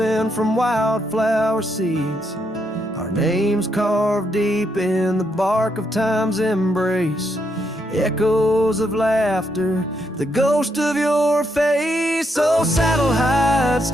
from wildflower seeds. Our names carved deep in the bark of time's embrace, echoes of laughter, the ghost of your face. Oh, saddle hides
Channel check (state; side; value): normal; both; correlation 0.78